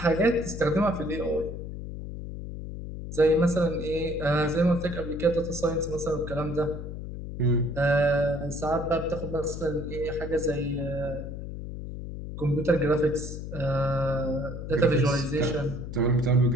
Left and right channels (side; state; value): left; noise; hum, 8 dB below the sound